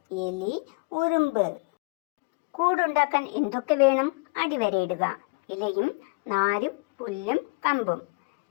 എലി, ഉറുമ്പ്. കൂടുണ്ടാക്കാൻ എന്തൊക്കെ വേണം? അടിവരയിടുക. ഇലയും നാരും പുല്ലും കമ്പും.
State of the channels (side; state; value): right; quieter; 30.8 dB